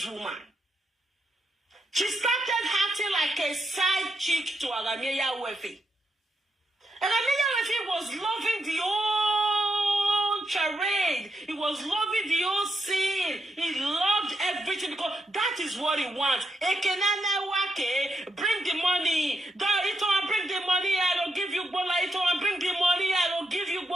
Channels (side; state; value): both; normal; correlation 0.81